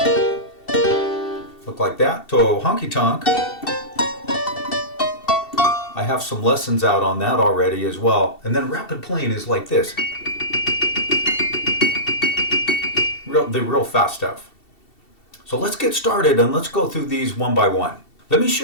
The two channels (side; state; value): right; late; 2.7 ms